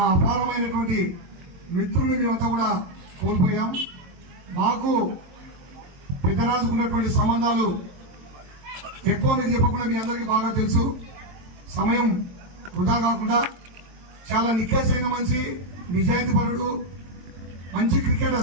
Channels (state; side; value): late; left; 22 ms